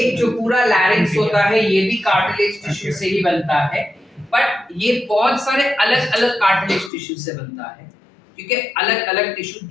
जो पूरा लैरिंक्स होता है ये भी कार्टिलेज टिश्यू से ही बनता है, बट ये बहुत सारे अलग अलग कार्टिलेज टिश्यू से बनता है, क्योंकि अलग अलग टिश्यू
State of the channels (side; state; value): right; drops out; at 6.9 s